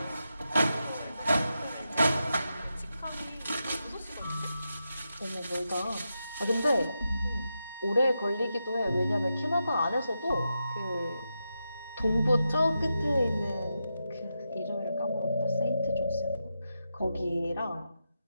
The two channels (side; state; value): both; inverted; correlation -0.87